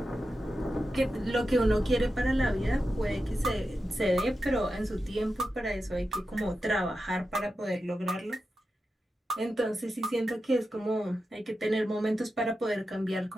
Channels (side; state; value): both; normal; correlation 0.90